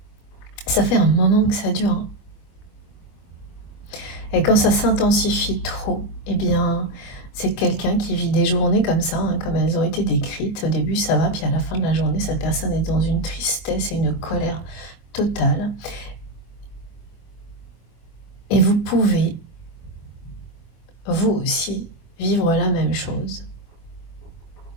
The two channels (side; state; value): right; late; 24 ms